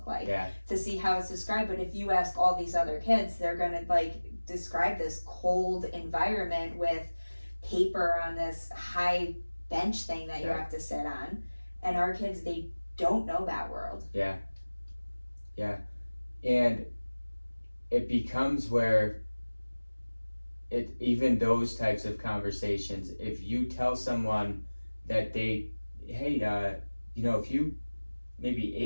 like? Yeah. To see how it's described. But if you ask all these other kids, they're gonna like describe this cold environment with paper on this high bench thing that you have to sit on. And our kids, they don't know that world. Yeah. Yeah. And it becomes where even those types of conversations, if you tell someone that if you maybe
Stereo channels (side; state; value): both; inverted; correlation -1.00